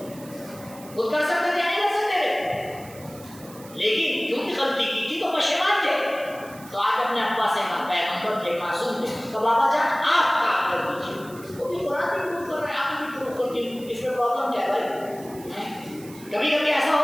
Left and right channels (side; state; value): right; noise; hiss, 20 dB below the sound